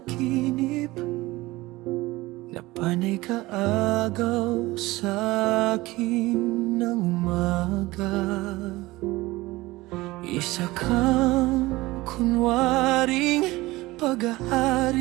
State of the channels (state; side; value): quieter; left; 19.8 dB